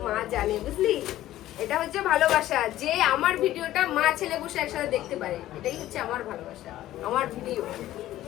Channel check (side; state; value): right; quieter; 14.2 dB